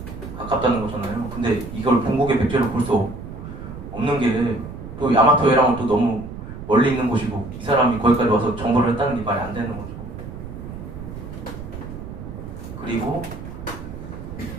가깝다는 거잖아요. 근데 이걸 본국의 백제로 볼 수 없는 게 또 야마토해랑은 또 너무 멀리 있는 곳이고 이 사람이 거기까지 와서 정보를 했다는 게 말이 안 되는 거죠. 그리고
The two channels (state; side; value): noise; right; rumble, 11 dB below the sound